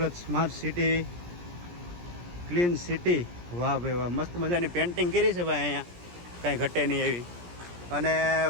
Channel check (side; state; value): left; late; 17 ms